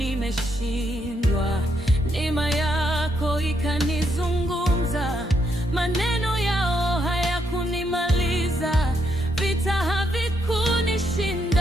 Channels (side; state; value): both; normal; correlation 0.77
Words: neema yako ikanizungumza. Maneno yao hayakunimaliza, vita